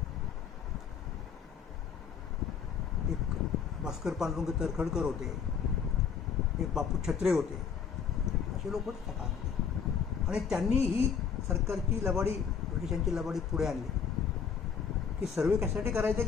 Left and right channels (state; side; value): quieter; right; 6.8 dB